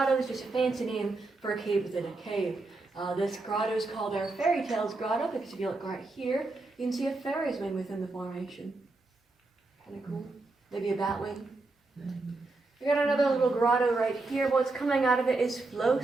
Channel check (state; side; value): quieter; left; 3.3 dB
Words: is just a fancy name for a cave within a cave. This grotto is called our Fairytales Grotto because if you look right here, you can see a fairy wing within the formation. Kind of cool. Maybe a bat wing. We got another little grotto right here. What's coming out of it is